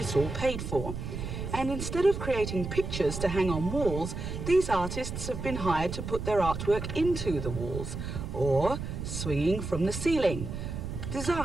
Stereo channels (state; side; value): noise; right; rumble, 6 dB below the sound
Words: all paid for. And instead of creating pictures to hang on walls, these artists have been hired to put their artwork into the walls, or swinging from the ceiling.